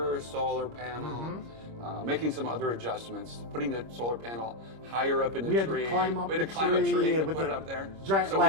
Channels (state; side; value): late; left; 26 ms